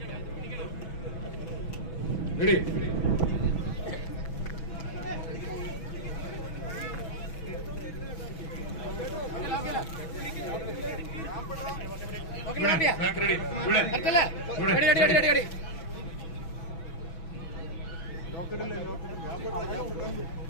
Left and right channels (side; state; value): right; late; 6.1 ms